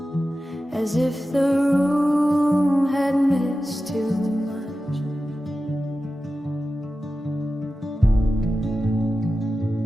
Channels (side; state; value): both; normal; correlation 0.93